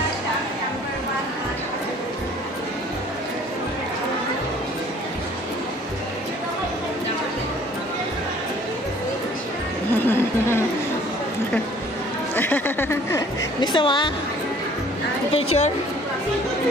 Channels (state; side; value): normal; both; correlation 0.54